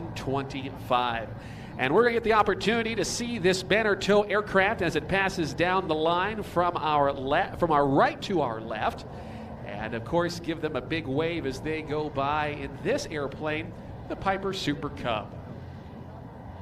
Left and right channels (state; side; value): identical; both; correlation 1.00